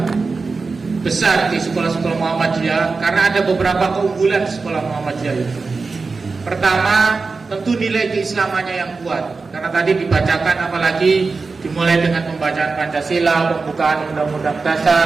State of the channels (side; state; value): left; quieter; 4.2 dB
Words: besar di sekolah-sekolah Muhammadiyah karena ada beberapa keunggulan di sekolah Muhammadiyah itu. Pertama, tentu nilai keislamannya yang kuat, karena tadi dibacakan apalagi dimulai dengan pembacaan Pancasila, pembukaan Undang-Undang